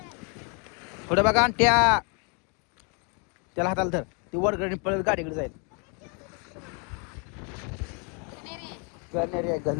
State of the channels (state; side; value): quieter; right; 35.3 dB